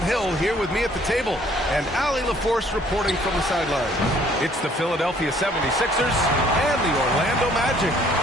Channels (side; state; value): both; normal; correlation 0.60